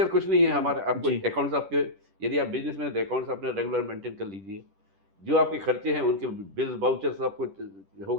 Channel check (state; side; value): late; left; 10 ms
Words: कुछ नहीं है हमारे, आपको अकाउंट्स आपके, यदि आप बिजनेस में, तो अकाउंट्स अपने रेगुलर मेंटेन कर लीजिए, जो आपके खर्चे हैं उनके बिल्स वाउचर्स आपको हो